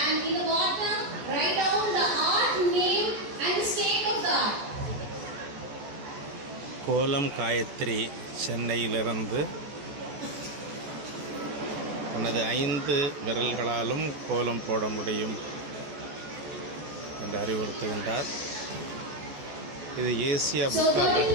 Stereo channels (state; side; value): late; left; 14 ms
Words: in the bottom write down the art name and the state of the art. கோலம் காயத்ரி சென்னையிலிருந்து தனது 5 விரல்களாலும் கோலம் போட முடியும் என்று அறிவுறுத்துகின்றார். இது ஏசியா புக் ஆஃப்